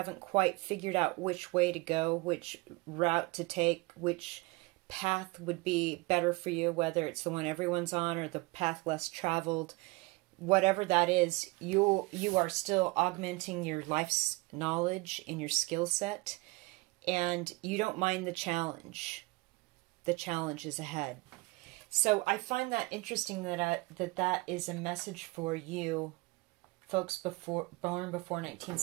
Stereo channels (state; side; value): quieter; left; 24.6 dB